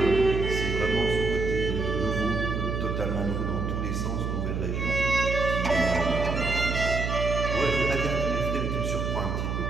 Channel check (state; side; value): noise; right; hum, 2 dB below the sound